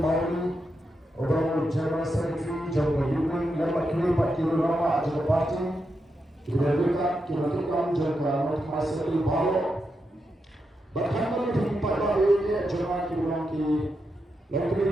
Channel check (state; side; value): normal; both; correlation 0.86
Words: Ublong General Secretary Jonka Ublong Lama Kini Pak Kilo Lama Ajak Party Kinerika Jonka Mat Masri Balo Berhambat di pada ini Jonka Ublong Ki